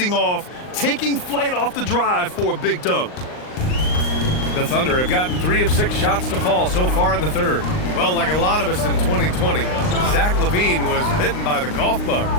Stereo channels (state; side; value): late; right; 39 ms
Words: off, taking flight off the drive for a big dunk. The Thunder have gotten 3 of 6 shots to fall so far in the third. Well, like a lot of us in 2020, Zach LaVine was bitten by the golf bug.